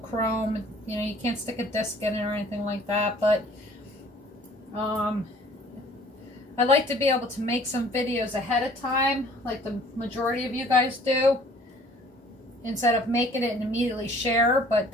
You know, you can't stick a disc in it or anything like that, but I like to be able to make some videos ahead of time, like the majority of you guys do, instead of making it and immediately share. But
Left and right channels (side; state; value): both; normal; correlation 0.54